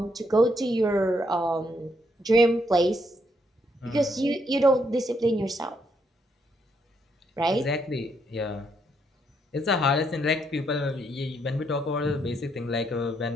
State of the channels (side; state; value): both; normal; correlation 0.75